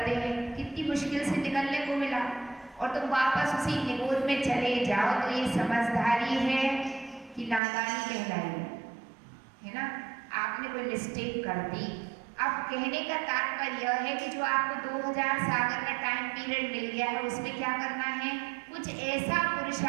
हैं, कितनी मुश्किल से निकलने को मिला, और तुम वापस उसी निबोध में चले जाओ, तो ये समझदारी है कि नादानी कहलाई है ना। आपने कोई मिस्टेक कर दी। अब कहने का तात्पर्य यह है कि जो आपको 2000 सागर का टाइम पीरियड मिल गया है, उसमें क्या करना है? कुछ ऐसा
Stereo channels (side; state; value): left; drops out; at 7.6 s